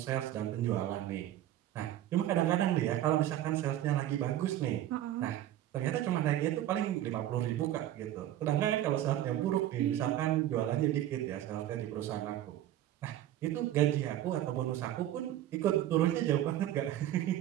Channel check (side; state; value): left; quieter; 12.8 dB